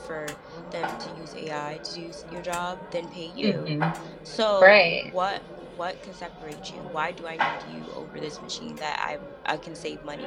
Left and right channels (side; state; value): both; identical; correlation 1.00